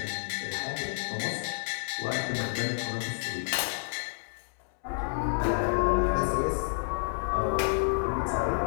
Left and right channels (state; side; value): silent; right; 58 dB below the other